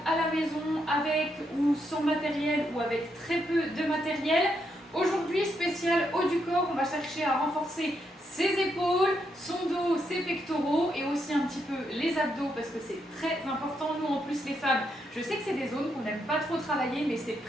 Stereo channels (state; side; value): normal; both; correlation 0.79